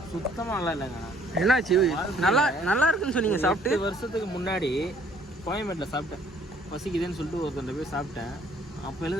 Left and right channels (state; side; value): normal; both; correlation 0.60